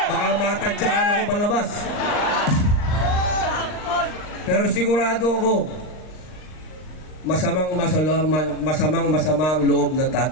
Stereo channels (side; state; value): right; late; 39 ms